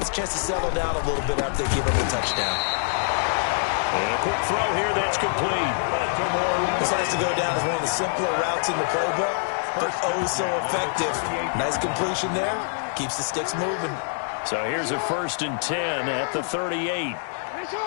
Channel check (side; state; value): right; silent; 58 dB below the other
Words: a chance to settle down a little bit after they give up a touchdown. And a quick throw here that's complete. This has to go down as one of the simpler routes in the playbook, but oh so effective. Nice completion there. Keeps the sticks moving. So here's a 1st and 10 at the 38.